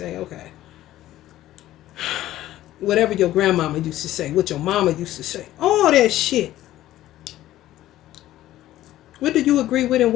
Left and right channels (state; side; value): quieter; right; 14.3 dB